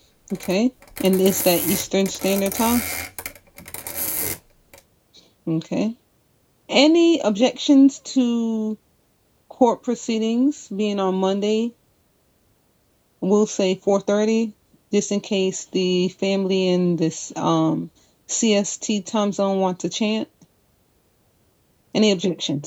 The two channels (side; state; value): both; identical; correlation 1.00